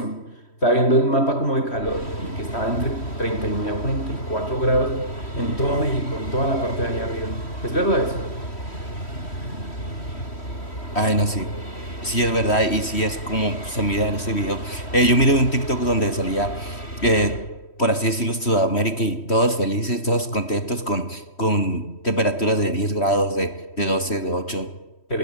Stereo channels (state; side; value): late; right; 3.1 ms